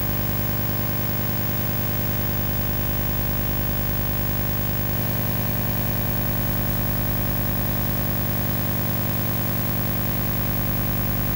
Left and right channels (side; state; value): both; normal; correlation 0.95